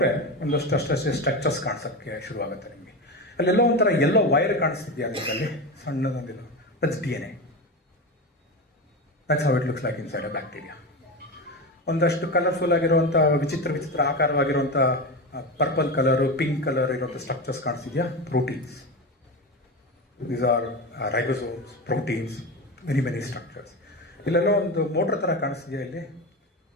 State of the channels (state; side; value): normal; both; correlation 0.21